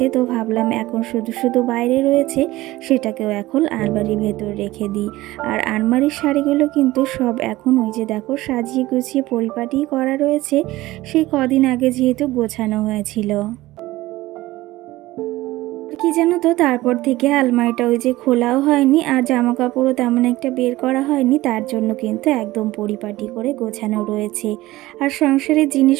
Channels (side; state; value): left; quieter; 17.8 dB